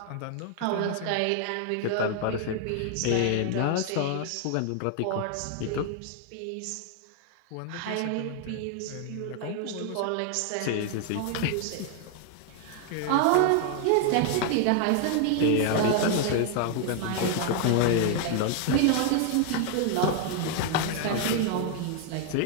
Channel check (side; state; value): both; different; correlation 0.00